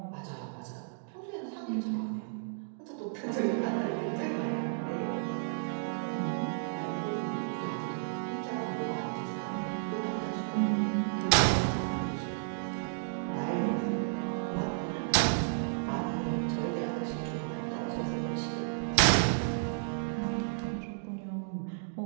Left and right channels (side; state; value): left; silent; digital silence